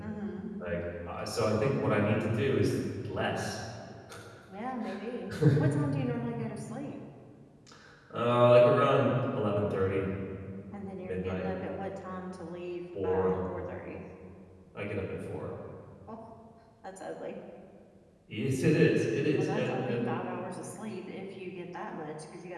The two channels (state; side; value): identical; both; correlation 1.00